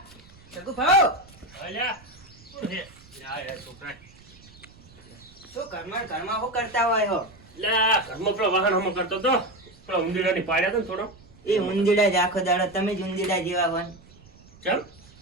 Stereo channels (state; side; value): noise; right; rumble, 24 dB below the sound